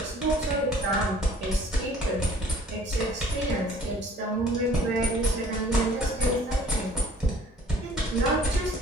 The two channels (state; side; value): normal; both; correlation 0.54